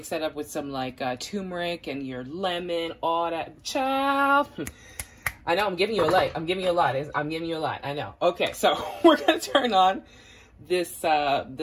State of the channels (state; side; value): identical; both; correlation 1.00